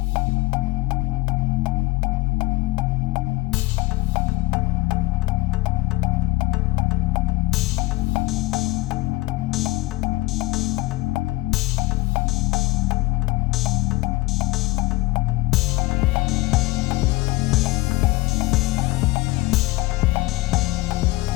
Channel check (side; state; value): right; quieter; 20.4 dB